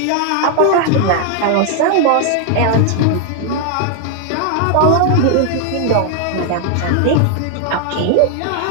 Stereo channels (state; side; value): different; both; correlation 0.00